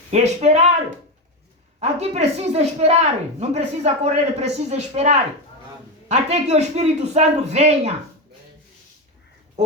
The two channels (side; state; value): both; normal; correlation 0.14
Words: Esperar. Aqui precisa esperar. Não precisa correr, precisa esperar. Até que o Espírito Santo venha.